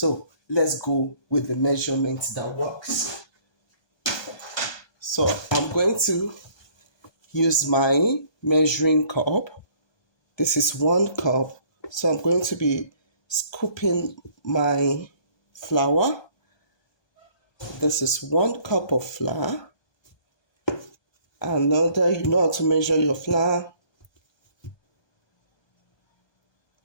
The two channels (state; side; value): late; right; 1.2 ms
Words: let's go with the measurements that works. So I'm going to use my measuring cup. This is 1 cup. So I'm going to be scooping my flour. This is 1 cup of flour. And now that you know how to measure your flour,